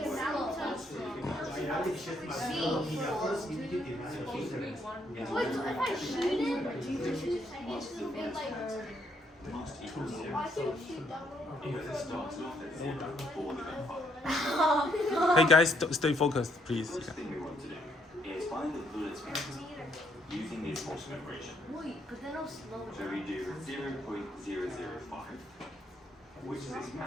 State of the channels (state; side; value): normal; both; correlation 0.72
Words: to work out the velocity because we have Wait, so if I shoot it, I guess it'll be like. Must equal Oh, 0. I can shoot that one. Because it starts off at 0 before the gun fire. Hey guys, stay focused, please. The first thing we want to do is find the bullet speed using the approximate equation. Wait, but then I'll slow So we do 0.005, which is its